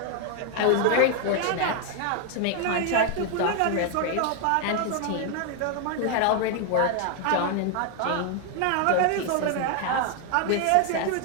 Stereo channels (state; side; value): different; both; correlation 0.00